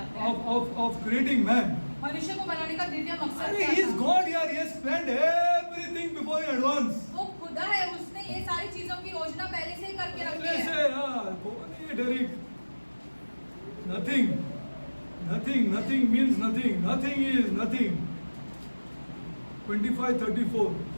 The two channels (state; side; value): inverted; both; correlation -1.00